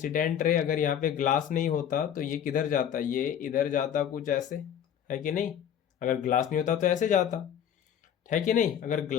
रे, अगर यहाँ पे ग्लास नहीं होता तो ये किधर जाता, ये इधर जाता कुछ ऐसे, है कि नहीं। अगर ग्लास नहीं होता तो ऐसे जाता, है कि नहीं। अगर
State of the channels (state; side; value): quieter; right; 9.3 dB